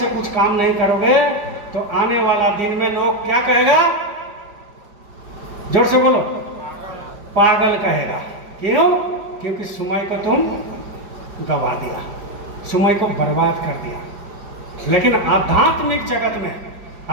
कुछ काम नहीं करोगे तो आने वाला दिन में लोग क्या कहेगा? जोर से बोलो, पागल कहेगा। क्यों? क्योंकि सुमई को तुम गवा दिया, सुमई को बर्बाद कर दिया। लेकिन आध्यात्मिक जगत में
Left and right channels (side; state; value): left; late; 4.9 ms